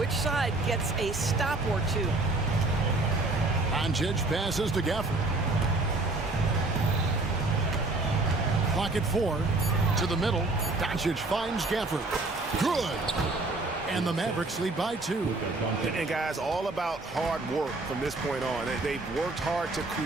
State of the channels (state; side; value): quieter; left; 3.1 dB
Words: side gets a stop or two. Doncic passes to Gafford. Clock at 4. To the middle. Doncic finds Gafford. Good. And the Mavericks lead by 2. And guys, all about hard work from this point on. They've worked hard to